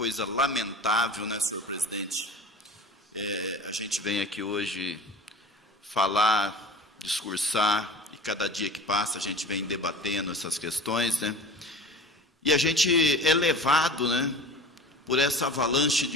lamentável, né, senhor presidente? A gente vem aqui hoje falar, discursar, e cada dia que passa a gente vem debatendo essas questões, né? E a gente é levado, né, por essa avalanche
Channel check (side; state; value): both; normal; correlation 0.38